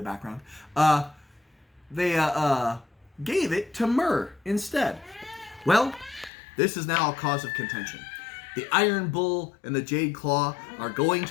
background, they gave it to Myr instead. Well, this is now a cause of contention. The Iron Bull and the Jade Claw are going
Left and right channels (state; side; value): drops out; right; at 6.3 s